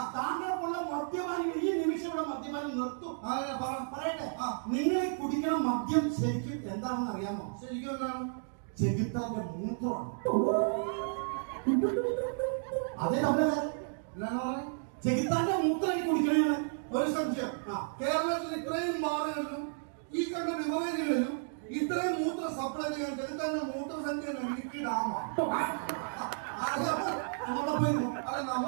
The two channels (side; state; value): left; silent; digital silence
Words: താങ്കൾക്കുള്ള മദ്യപാനം ഈ നിമിഷം ഇവിടെ മദ്യപാനം നിർത്തും. പറയട്ടെ, നിങ്ങൾ കുടിക്കുന്ന മദ്യം ശരിക്കും എന്താണെന്ന് അറിയാമോ? ശരിക്കും എന്താണ്? ചെകുത്താന്റെ മൂത്രമാണ്. അതേ നമ്മളെ ചെകുത്താന്റെ മൂത്രം കുടിക്കണേ. ഒരു സംശയം, കേരളത്തിൽ ഇത്രയും ബാറുകളിലും ഈ കണ്ട ബിവറേജുകളിലും ഇത്രയും മൂത്ര സപ്ലൈ ചെയ്യാൻ ചെകുത്താന്റെ മൂത്ര സംഖ്യ ഇടുക്കി ഡാമാണ്. അല്ല,